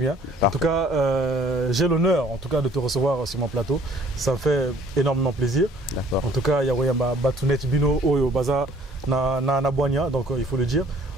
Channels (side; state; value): both; normal; correlation 0.57